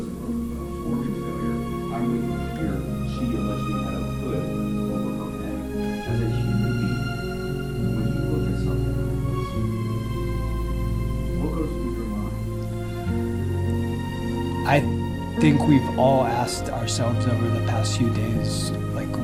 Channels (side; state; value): both; identical; correlation 1.00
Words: broken bones, organ failure. I'm reading here, she allegedly had a hood over her head. As a human being, when you look at something like this, what goes through your mind? I think we've all asked ourselves over the past few days, like